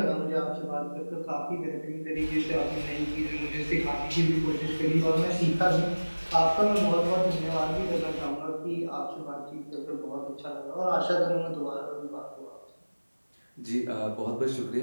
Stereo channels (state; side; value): inverted; both; correlation -1.00